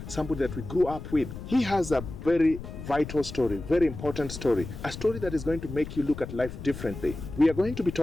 somebody that we grew up with. He has a very vital story, very important story, a story that is going to make you look at life differently. We are going to be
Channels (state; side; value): noise; left; rumble, 10 dB below the sound